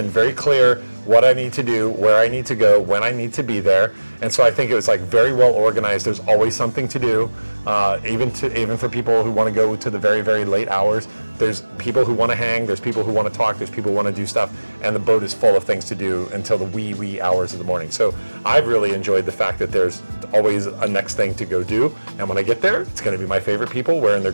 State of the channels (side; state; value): both; inverted; correlation -1.00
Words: very clear what I need to do, where I need to go, when I need to be there. And so I think it was like very well organized. There's always something to do, even for people who want to go to the very, very late hours. There's people who want to hang, there's people who want to talk, there's people who want to do stuff, and the boat is full of things to do until the wee hours of the morning. So I've really enjoyed the fact that there's always a next thing to go do, and when I get there, it's going to be my favorite people wearing their